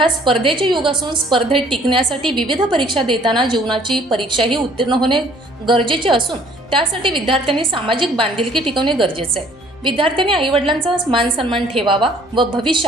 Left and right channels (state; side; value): normal; both; correlation 0.58